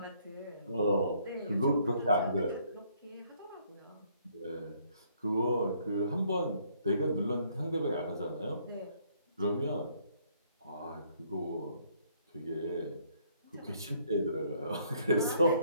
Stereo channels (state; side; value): inverted; both; correlation -0.66